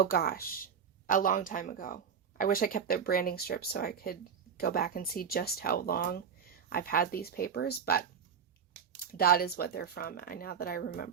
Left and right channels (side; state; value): left; quieter; 7.2 dB